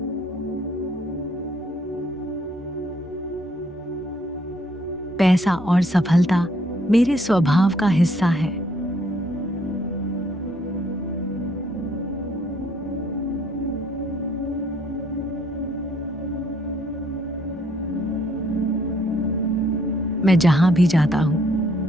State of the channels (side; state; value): both; normal; correlation 0.66